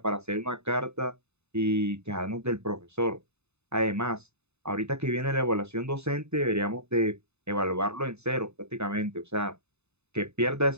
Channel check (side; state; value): left; late; 0.81 ms